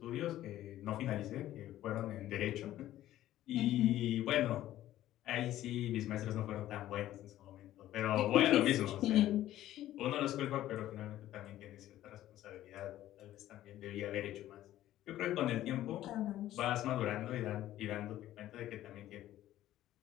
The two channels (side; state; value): right; quieter; 13.6 dB